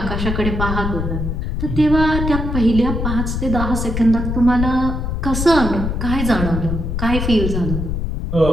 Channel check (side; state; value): left; noise; rumble, 2 dB below the sound